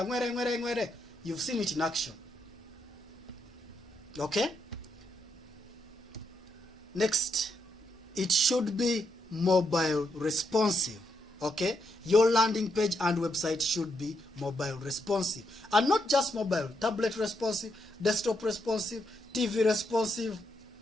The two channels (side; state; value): both; normal; correlation 0.79